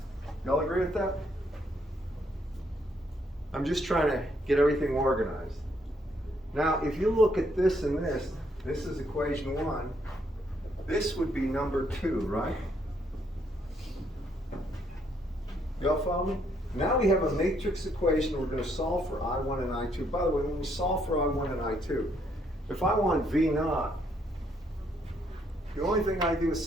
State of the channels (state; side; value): normal; both; correlation 0.71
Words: Y'all agree with that? I'm just trying to get everything organized. Now, if you look at this and this is equation 1. this would be number 2, right? Y'all follow me? Now we have a matrix equation. We're going to solve for I1 and I2. By the way, when we solve for I1 and I2, if I want V naught, the only thing I do is